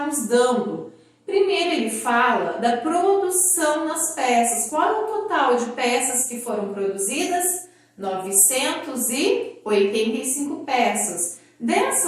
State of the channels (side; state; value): both; identical; correlation 1.00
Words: nos dando? Primeiro, ele fala da produção das peças. Qual é o total de peças que foram produzidas? 985 peças.